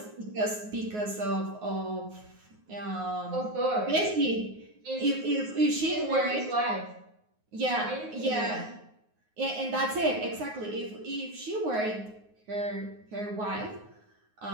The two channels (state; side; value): late; left; 9.5 ms